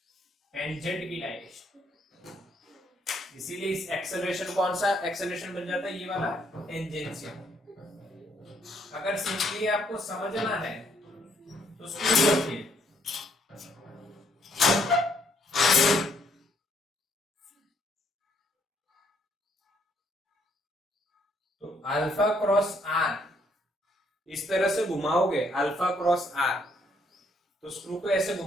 टेंजेंट की डायरेक्शन। इसीलिए इस एक्सेलरेशन कौन सा एक्सेलरेशन बन जाता है? ये वाला टेंजेंशियल। अगर सिंपली आपको समझना है तो स्कूल रखिए। तो अल्फा क्रॉस आर इस तरह से घुमाओगे, अल्फा क्रॉस आर, तो स्क्रू को ऐसे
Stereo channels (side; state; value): both; normal; correlation 0.70